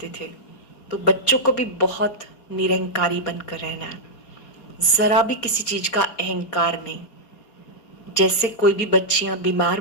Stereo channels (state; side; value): late; right; 4.3 ms